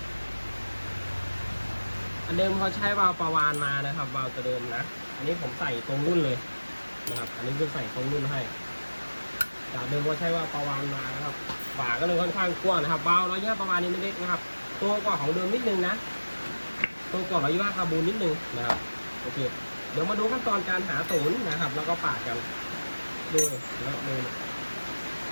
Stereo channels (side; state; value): both; inverted; correlation -1.00